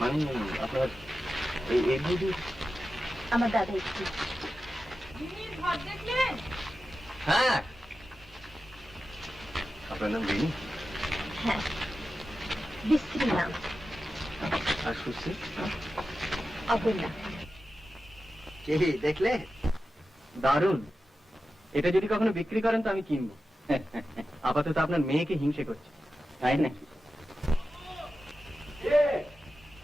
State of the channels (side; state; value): both; normal; correlation 0.93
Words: আপনার এই বৌদি? আমার দাদা একটু। ঘর দেখলেন? হ্যাঁ। আপনার নাম রিনি? হ্যাঁ, বিশ্রী নাম। আর সুশ্রী? অপর্ণা। কি দেখলে? দারুণ। এটা যদি কখনো বিক্রি করেন তো আমি কিনবো। আপাতত আপনার মেয়েকে হিংসে করছে। তাই নাকি?